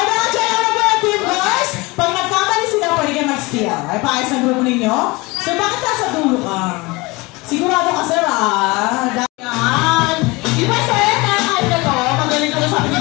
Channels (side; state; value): right; quieter; 23.9 dB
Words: na-check na ba yung team boys? Pag nagkamali sila, pwede kayo mag-steal. Ay, paayos ang grupo ninyo? So, bakit nasa dulo ka? Sigurado ka, sir, ah. Yan. Di ba, sir, kahit na to, magaling ka na sabi ni